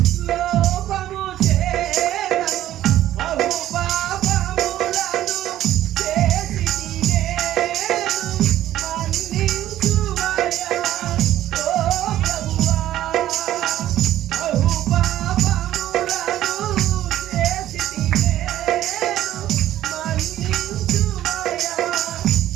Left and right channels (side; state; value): left; quieter; 13.2 dB